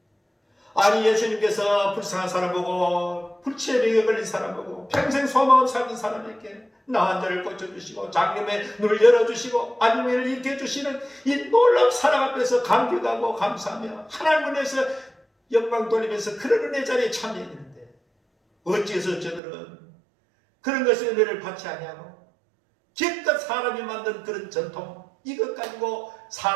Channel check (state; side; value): drops out; left; at 19.4 s